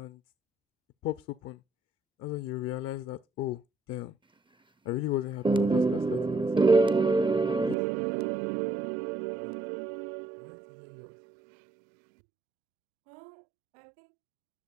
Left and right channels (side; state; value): left; drops out; at 7.8 s